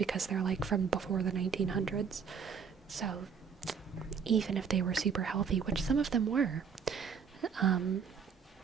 they're like from before the 1900s. So, even if they were super healthy, which some of them were,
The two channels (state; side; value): quieter; left; 6.4 dB